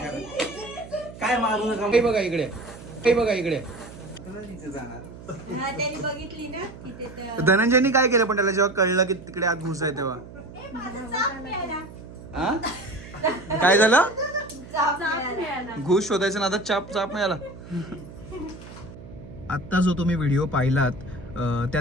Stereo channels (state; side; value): noise; right; hum, 16 dB below the sound